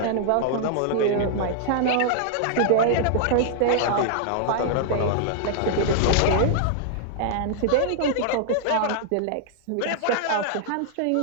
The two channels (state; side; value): different; both; correlation -0.01